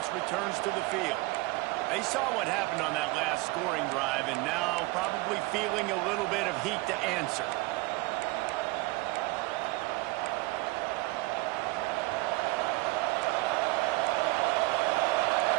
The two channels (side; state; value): left; quieter; 22.5 dB